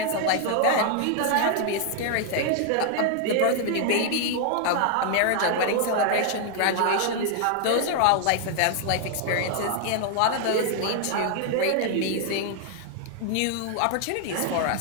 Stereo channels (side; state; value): both; different; correlation 0.00